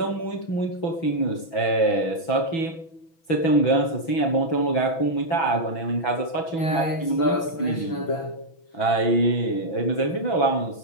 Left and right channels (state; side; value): late; right; 6.1 ms